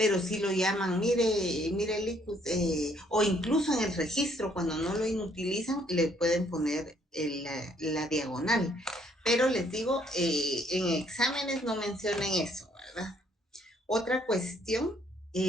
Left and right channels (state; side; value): normal; both; correlation 0.66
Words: sí lo llaman, mire, Licus, o incluso en el registro, cuando no lo inutilizan, le pueden poner la diagonal. Pero les digo, en exámenes no mencionen eso, ¿verdad? Otra cuestión